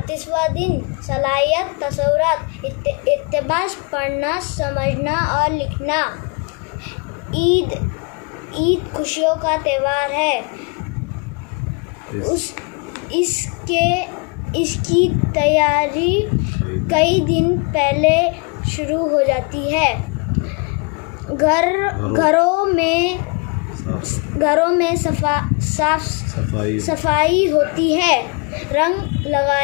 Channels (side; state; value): right; quieter; 32.8 dB